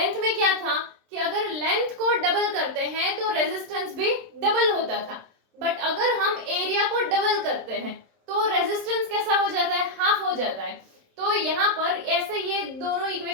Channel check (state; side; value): late; left; 27 ms